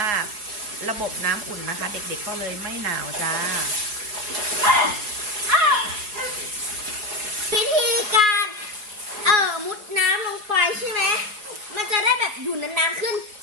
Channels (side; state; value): left; late; 4.8 ms